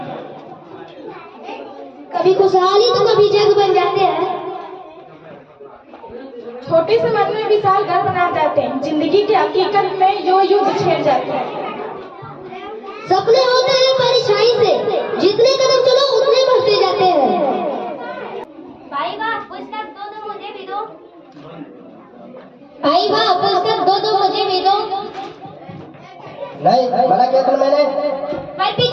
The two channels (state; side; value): identical; both; correlation 1.00